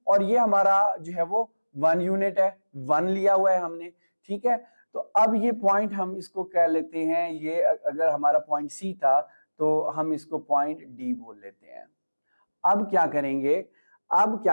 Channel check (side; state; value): both; inverted; correlation -1.00